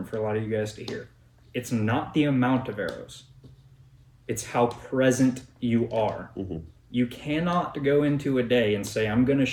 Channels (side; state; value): both; identical; correlation 1.00